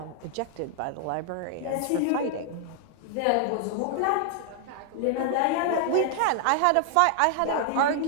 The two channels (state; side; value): different; both; correlation 0.00